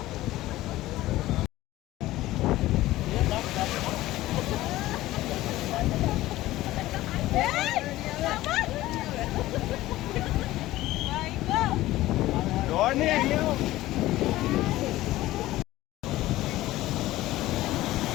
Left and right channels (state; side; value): quieter; right; 16.4 dB